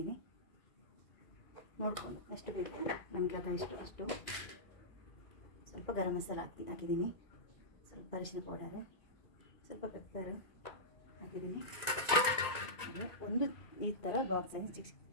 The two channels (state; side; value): late; right; 2.5 ms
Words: ನೋಡಿಕೊಂಡು ಎಷ್ಟು ಬೇಕು ನಮಗೆ ಅಷ್ಟು ಸ್ವಲ್ಪ ಗರಂ ಮಸಾಲ ಹಾಕಿದ್ದೀನಿ, ಸ್ವಲ್ಪ ಅರಿಶಿನ ಪೌಡರ್, ಸ್ವಲ್ಪ ಪೆಪ್ಪರ್ ಹಾಕಿದ್ದೀನಿ. ಒಂದು ಈ ಥರ ಬಾಕ್ಸ್